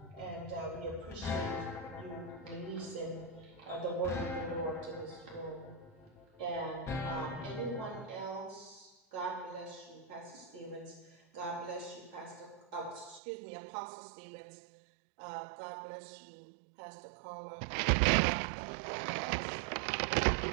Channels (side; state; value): left; drops out; at 13.2 s